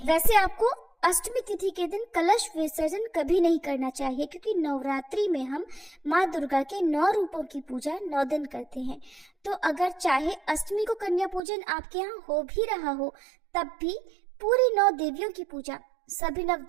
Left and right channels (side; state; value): left; drops out; at 11.4 s